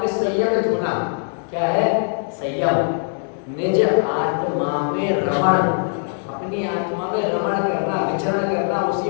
संयमित होना। क्या है? संयम। निज आत्मा में रमण, अपनी आत्मा में रमण करना, विचरण करना,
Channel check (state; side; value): silent; right; 65 dB below the other